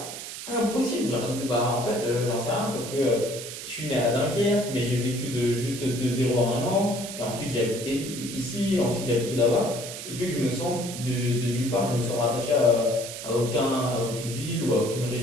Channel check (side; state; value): right; noise; hiss, 9 dB below the sound